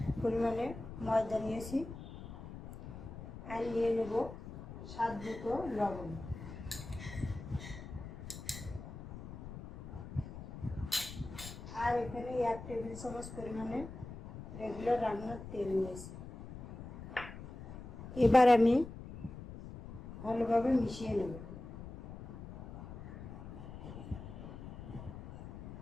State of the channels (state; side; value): noise; left; rumble, 12 dB below the sound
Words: পরিমাণে ময়দা নিয়েছি আর নিয়ে নেব স্বাদ মতো লবণ। আর এখানে 1 টেবিল চামচ পরিমাণে রেগুলার রান্নার তেল নিয়েছি। এবার আমি ভালোভাবে মিশিয়ে নেব।